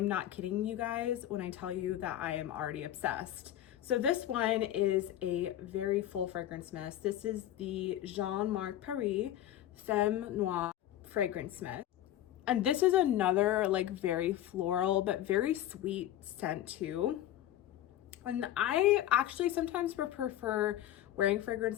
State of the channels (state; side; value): quieter; right; 12.6 dB